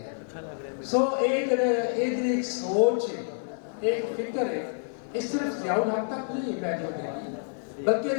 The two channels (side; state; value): right; silent; 59 dB below the other